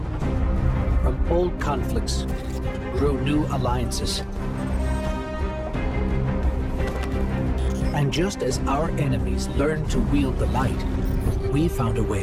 From old conflicts grew new alliances. And just as our enemies learned to wield the light, we found a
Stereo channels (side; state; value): both; identical; correlation 1.00